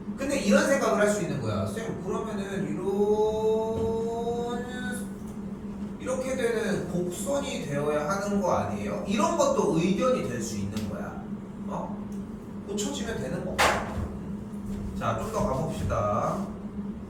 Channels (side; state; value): both; identical; correlation 1.00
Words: 근데 이런 생각을 할 수 있는 거야. 쌤, 그러면은 이렇게 되는 곡선이 되어야 하는 거 아니에요? 이런 것도 의견이 될 수 있는 거야. 고쳐지면 되는 거. 자, 좀 더 가봅시다.